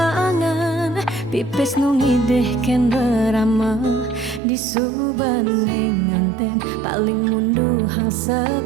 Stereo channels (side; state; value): left; drops out; at 4.4 s